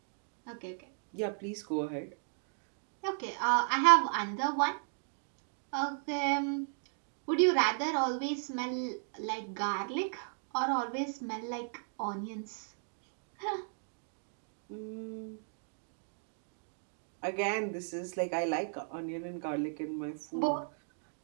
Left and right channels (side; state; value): left; silent; digital silence